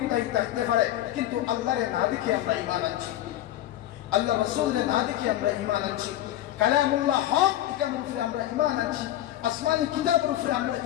থাকতে পারে, কিন্তু আল্লাহরে না দেখে আমরা ঈমান আনছি, আল্লাহ রাসূলের না দেখে আমরা ঈমান আনছি, কালামুল্লাহ হক এর উপরে আমরা ঈমান আনছি, আসমানি কিতাবের উপরে আমরা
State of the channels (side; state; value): right; quieter; 13.5 dB